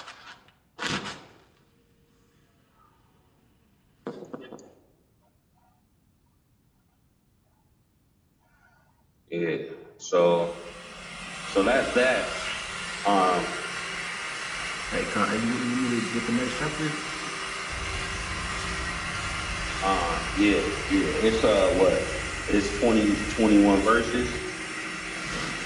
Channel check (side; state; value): both; identical; correlation 1.00